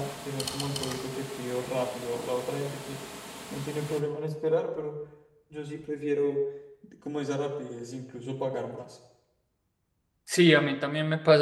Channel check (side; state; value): both; identical; correlation 1.00